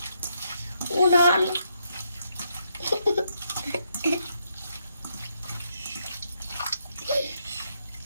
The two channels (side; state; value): both; inverted; correlation -0.77